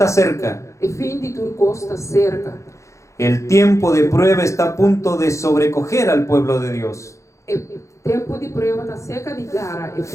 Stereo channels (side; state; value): right; late; 0.15 ms